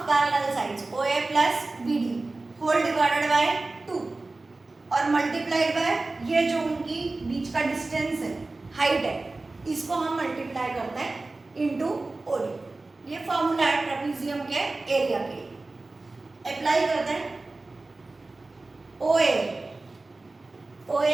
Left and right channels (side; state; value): left; quieter; 3.3 dB